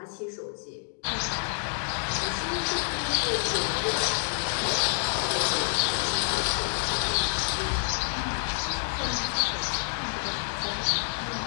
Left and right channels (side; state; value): right; silent; digital silence